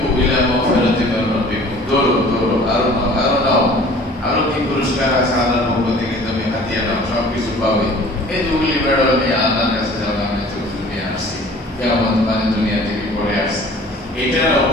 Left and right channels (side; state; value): both; normal; correlation 0.48